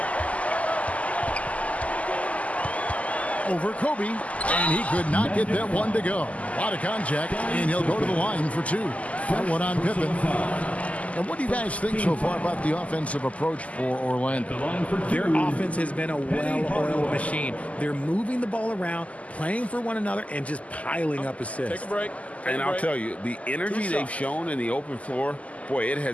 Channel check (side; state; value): right; late; 0.070 ms